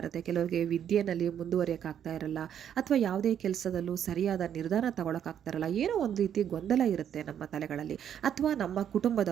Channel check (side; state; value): left; quieter; 9.3 dB